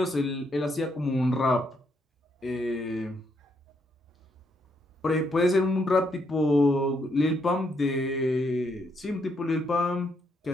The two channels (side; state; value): both; normal; correlation 0.75